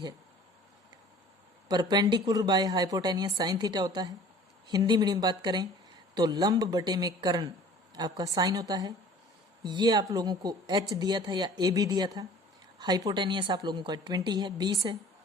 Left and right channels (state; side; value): normal; both; correlation 0.47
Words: Perpendicular by hypotenuse sine theta होता है। हिंदी मीडियम बात करें तो लंब बटे में कर्ण आपका साइन होता है। ये आप लोगों को H दिया था या AB दिया था। हाइपोटेनियस आप लोगों का 20 है, 20 है,